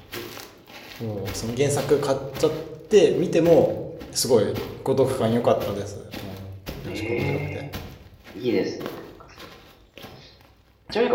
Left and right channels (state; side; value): identical; both; correlation 1.00